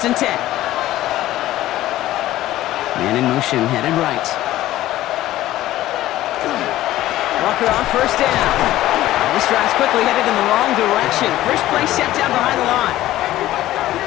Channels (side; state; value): right; quieter; 14.9 dB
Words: and 10. Man in motion, headed right. Walker on 1st down. This drive's quickly headed in the wrong direction. First play set down behind the line.